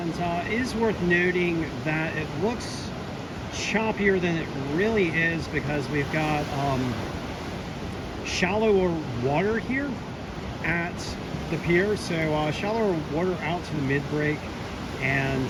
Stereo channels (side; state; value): both; identical; correlation 1.00